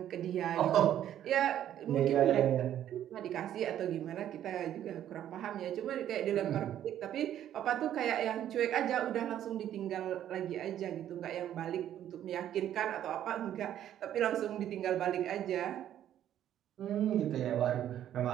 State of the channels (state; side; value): quieter; left; 11.1 dB